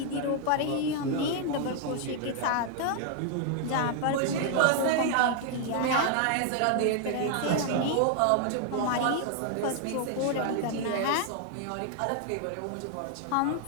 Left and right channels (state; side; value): different; both; correlation 0.00